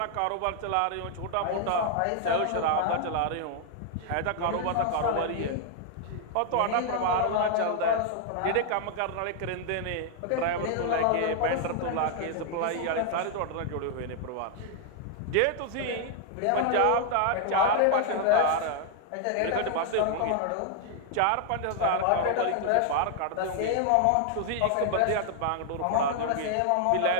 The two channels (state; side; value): different; both; correlation -0.01